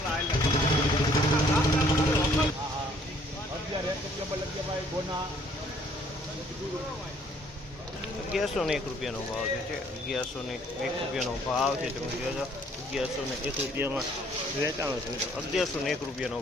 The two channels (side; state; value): both; normal; correlation 0.61